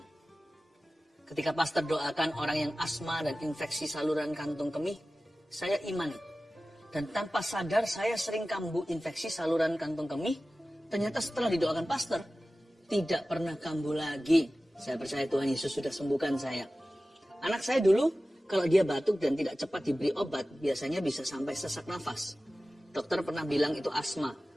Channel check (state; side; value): normal; both; correlation 0.96